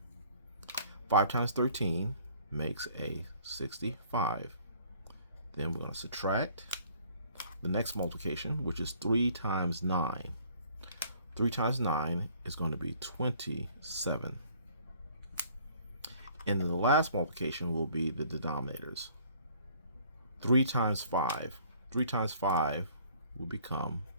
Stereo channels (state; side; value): inverted; both; correlation -0.57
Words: 5 times 13 makes a 65. Then we're going to subtract the next multiplication, which is 3 times 9. 3 times 9 is going to be 27. And then the last multiplication will be the denominators. 3 times 5. 3 times 5 will become